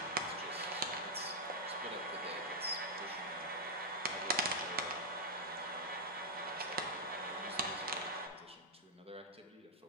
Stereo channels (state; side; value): normal; both; correlation -0.06